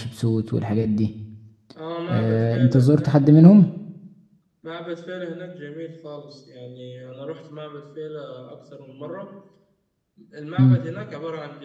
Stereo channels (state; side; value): identical; both; correlation 1.00